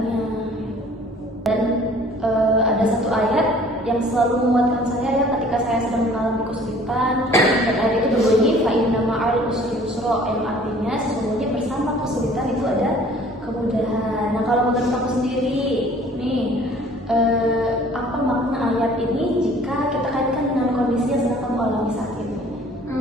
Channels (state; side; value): normal; both; correlation 0.52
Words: Dan ada satu ayat yang selalu menguatkan saya ya ketika saya sedang mengalami kesulitan, dan ayat itu berbunyi fa inna ma'al usri yusra, yang artinya sesungguhnya bersama kesulitan itu ada kemudahan. Nah, kalau menurut aku sendiri nih, apa makna ayat ini jika kita kaitkan dengan kondisi yang sedang kamu alami saat ini?